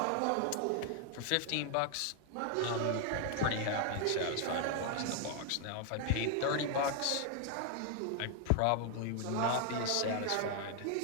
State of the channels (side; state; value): both; different; correlation 0.00